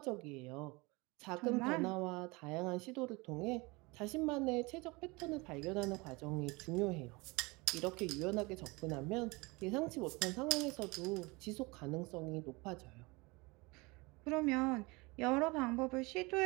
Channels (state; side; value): quieter; left; 25.3 dB